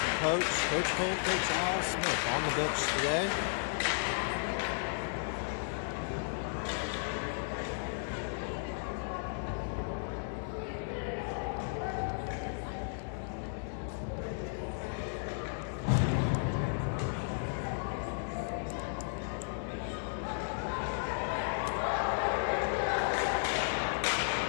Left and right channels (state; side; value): silent; right; digital silence